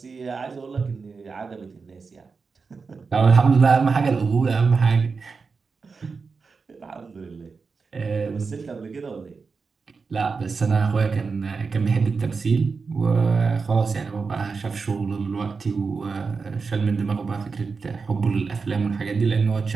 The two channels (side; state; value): left; quieter; 4.8 dB